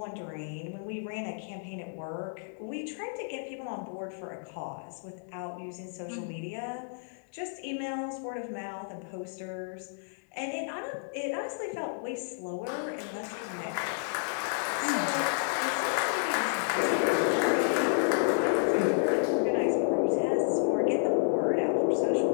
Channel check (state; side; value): silent; right; digital silence